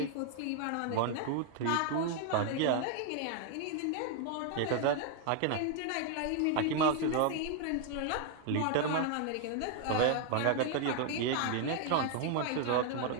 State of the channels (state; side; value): different; both; correlation 0.00